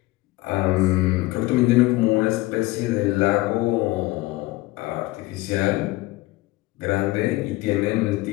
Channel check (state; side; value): quieter; right; 19.6 dB